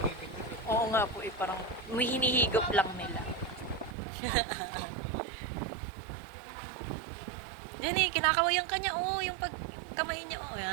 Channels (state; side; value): drops out; left; at 4.0 s